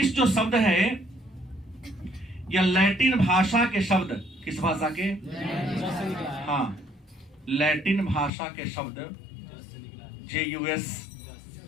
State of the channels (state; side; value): drops out; right; at 8.3 s